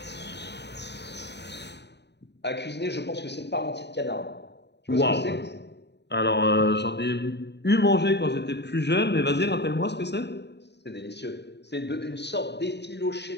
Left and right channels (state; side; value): late; right; 0.50 ms